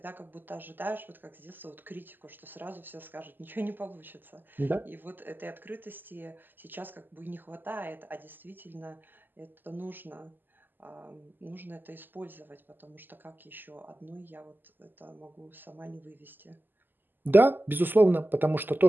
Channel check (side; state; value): left; late; 0.091 ms